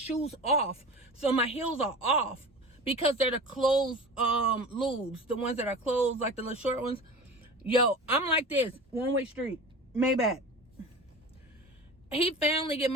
off. So my heels are off because they're the closed lubes. The ones that are closed, like the little short ones. Yo, I'm like this. One-way street. Maybach. He finally get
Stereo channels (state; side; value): normal; both; correlation 0.34